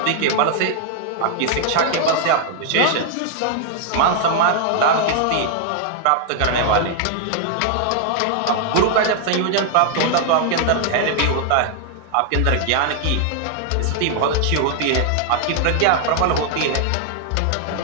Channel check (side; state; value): both; different; correlation 0.00